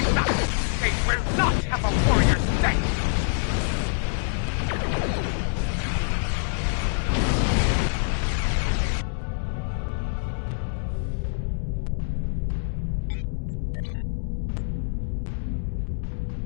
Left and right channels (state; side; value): silent; right; 61 dB below the other